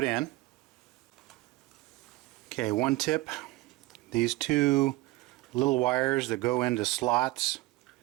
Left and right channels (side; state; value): left; quieter; 19.8 dB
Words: in. Okay, one tip. These 2 little wires that go into slots